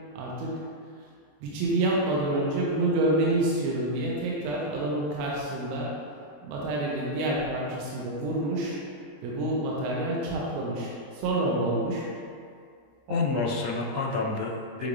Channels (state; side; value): late; left; 21 ms